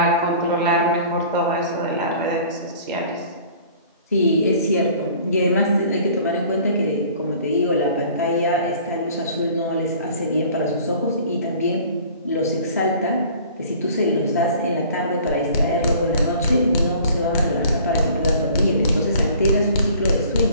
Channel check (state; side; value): inverted; both; correlation -0.49